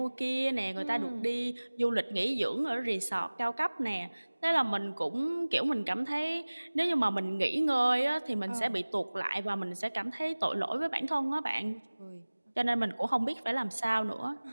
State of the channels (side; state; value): both; inverted; correlation -1.00